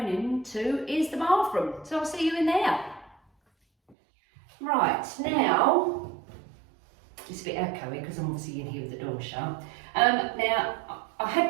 into is the bathroom. So I'll see you in there. Right, now, it's a bit echoey because I'm obviously in here with the door shut. Now, I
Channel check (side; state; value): left; drops out; at 4.0 s